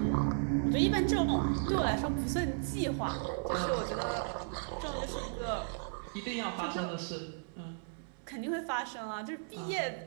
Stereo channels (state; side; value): silent; left; 55 dB below the other